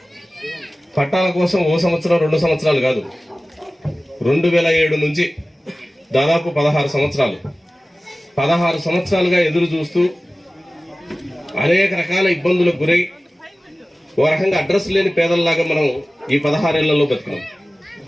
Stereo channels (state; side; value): normal; both; correlation 0.97